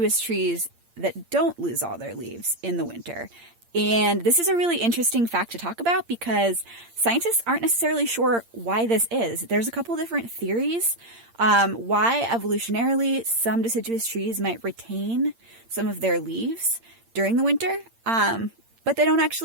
trees that don't lose all their leaves in the winter. And this is a really interesting fact to talk about because scientists aren't necessarily sure why this is. There's a couple different theories why evolutionarily some deciduous trees might retain some of their leaves during the winter, but they don't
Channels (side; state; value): left; late; 8.7 ms